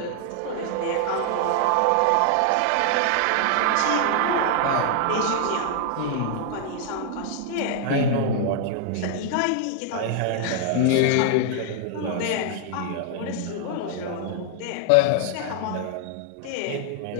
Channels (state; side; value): different; both; correlation -0.01